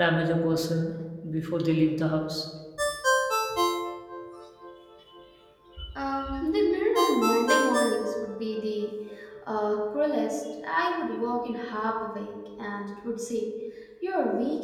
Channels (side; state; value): both; identical; correlation 1.00